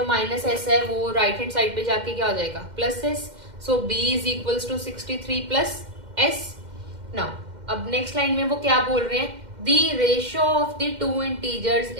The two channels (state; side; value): late; left; 2.1 ms